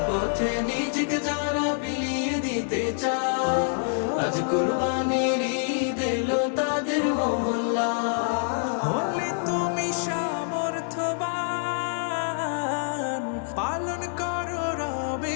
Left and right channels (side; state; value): right; silent; digital silence